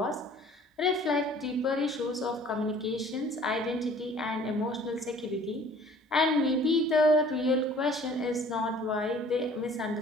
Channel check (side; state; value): both; normal; correlation 0.52